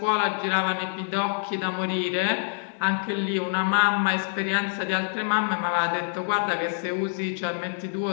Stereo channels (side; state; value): right; silent; digital silence